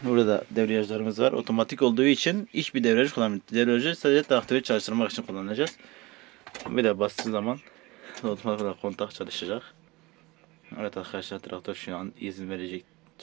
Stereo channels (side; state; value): left; quieter; 22.4 dB